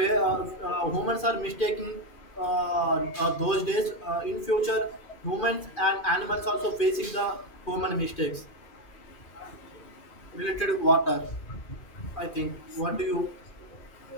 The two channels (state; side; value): late; right; 2.4 ms